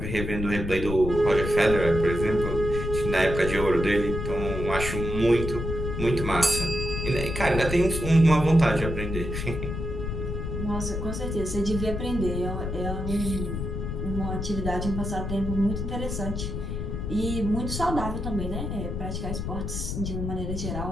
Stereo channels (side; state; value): left; noise; rumble, 4 dB below the sound